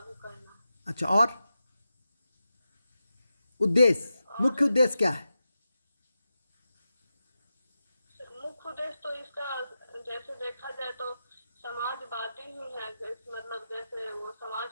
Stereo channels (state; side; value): inverted; both; correlation -0.91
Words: करना। अच्छा, और उद्देश्य, मुख्य उद्देश्य क्या है? मुख्य उद्देश्य तो इसका जैसे देखा जाए तो समाजवादी ही है। मतलब जैसे वो